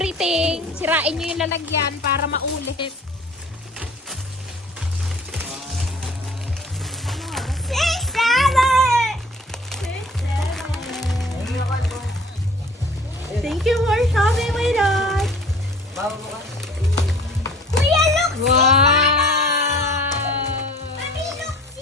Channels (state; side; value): normal; both; correlation 0.48